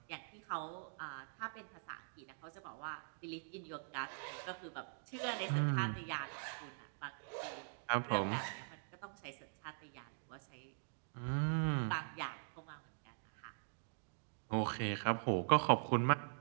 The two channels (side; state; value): left; silent; digital silence